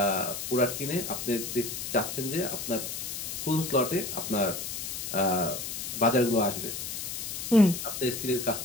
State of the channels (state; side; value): noise; left; hiss, 5 dB below the sound